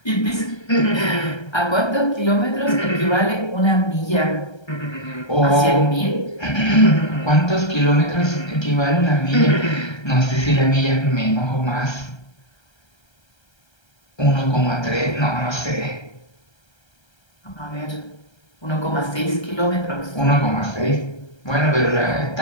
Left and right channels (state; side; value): late; right; 1.3 ms